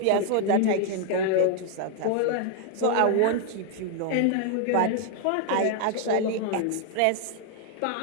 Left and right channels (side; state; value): both; different; correlation 0.00